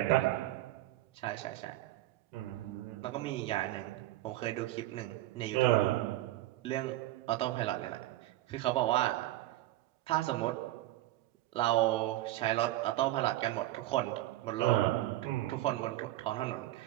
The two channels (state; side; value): quieter; left; 16.0 dB